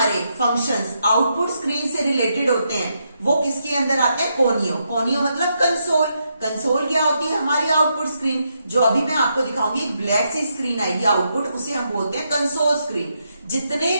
फंक्शंस आउटपुट स्क्रीन से रिलेटेड होते हैं वो किसके अंदर आते हैं, कोनियो। कोनियो मतलब कंसोल। कंसोल क्या होती है, हमारी आउटपुट स्क्रीन। जो अभी मैं आपको दिखाऊंगी एक ब्लैक सी स्क्रीन आएगी आउटपुट, उसे हम बोलते हैं कंसोल स्क्रीन। जितने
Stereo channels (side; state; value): both; inverted; correlation -0.80